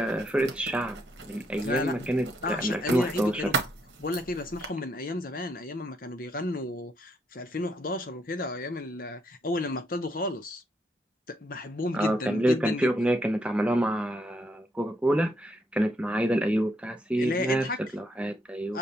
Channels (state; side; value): normal; both; correlation 0.75